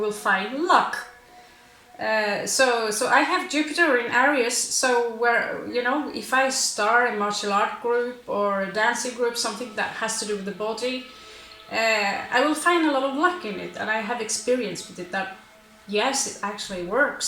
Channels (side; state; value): both; identical; correlation 1.00